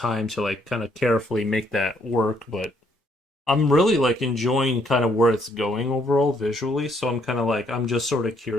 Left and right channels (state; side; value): normal; both; correlation 0.69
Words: to like kind of carefully make that work, but I'm really like enjoying kind of where it's going overall visually, so I'm kind of like I'm just sort of